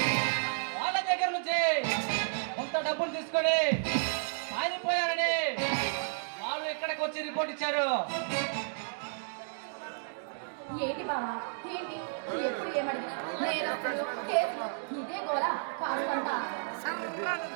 వాళ్ళ దగ్గర నుంచి కొంత డబ్బులు తీసుకొని పారిపోయారని వాళ్ళు ఇక్కడికి వచ్చి రిపోర్ట్ ఇచ్చారు. ఏంటి బావా ఏంటి ఎప్పుడు ఏమడిగినా నేరస్తులు కేసులు ఇదే గోల కాదంతా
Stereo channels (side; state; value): left; silent; digital silence